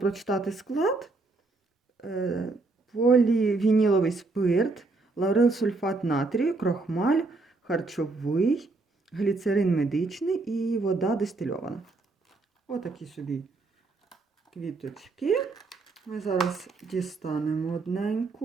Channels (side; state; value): left; quieter; 3.5 dB